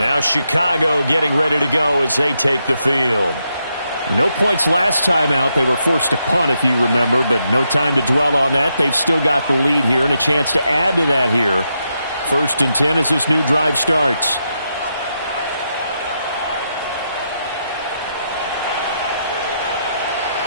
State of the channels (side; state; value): both; inverted; correlation -0.82